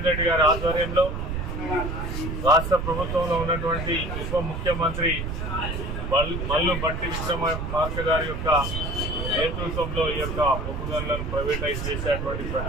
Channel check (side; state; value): right; noise; rumble, 4 dB below the sound